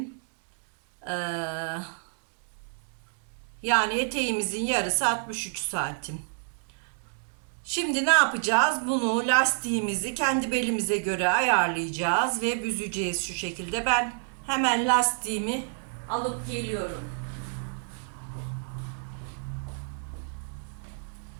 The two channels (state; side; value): silent; left; digital silence